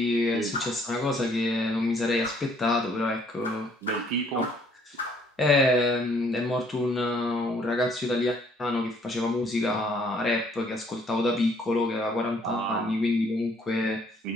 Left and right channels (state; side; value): normal; both; correlation 0.63